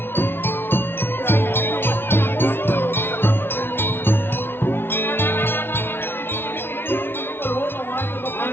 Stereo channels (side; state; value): right; late; 0.11 ms